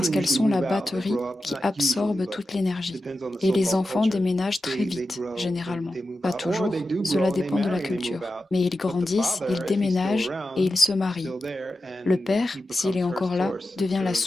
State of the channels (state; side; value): normal; both; correlation 0.91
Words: qu'elles sont la batterie qui absorbe toute l'énergie. Et les enfants déménagent très vite, généralement. Pas toujours, cela dépend de la culture. Mais ils grandissent, ils déménagent et ils se marient. Le père, s'il est encore là, devient la